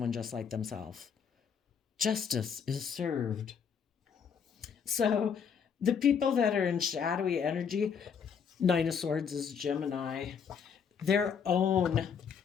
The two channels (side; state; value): right; quieter; 6.9 dB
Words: just like themselves. Justice is served. So the people that are in shadowy energy, Nine of Swords is Gemini, their own